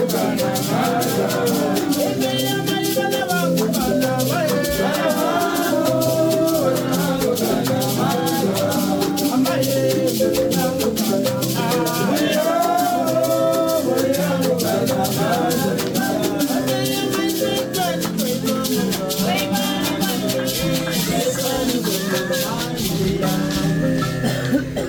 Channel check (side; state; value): both; identical; correlation 1.00